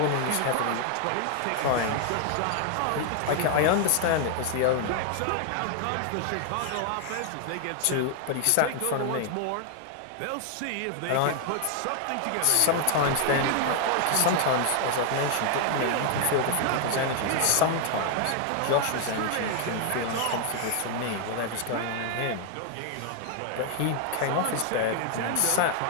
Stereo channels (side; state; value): both; different; correlation 0.00